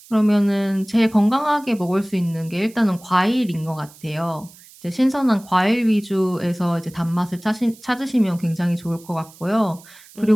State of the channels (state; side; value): noise; right; hiss, 23 dB below the sound